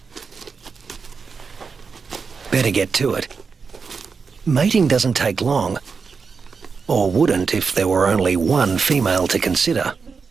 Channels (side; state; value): left; quieter; 5.3 dB